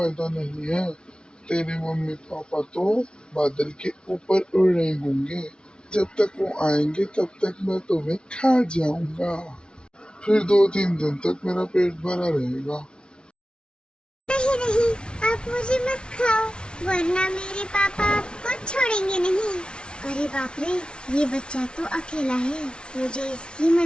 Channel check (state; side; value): late; right; 0.056 ms